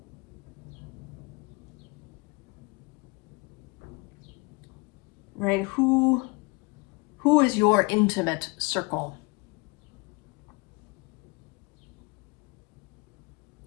Right? Who is your intimate circle?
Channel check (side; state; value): right; quieter; 27.5 dB